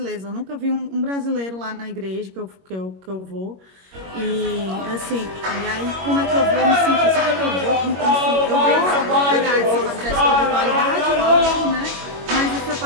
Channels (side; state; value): left; late; 21 ms